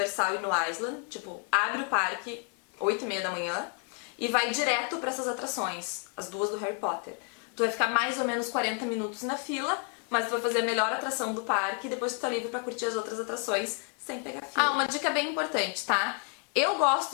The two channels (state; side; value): quieter; right; 39.7 dB